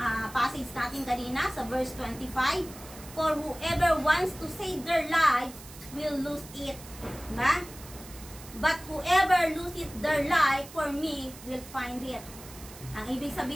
passage natin kanina, sa verse 25, for whoever wants to save their lives will lose it. Diba? But whoever loses their life for me will find it. Ang ibig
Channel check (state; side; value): noise; right; hiss, 17 dB below the sound